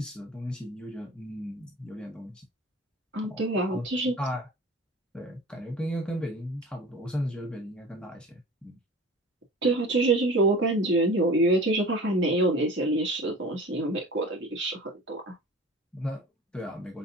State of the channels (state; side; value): normal; both; correlation 0.39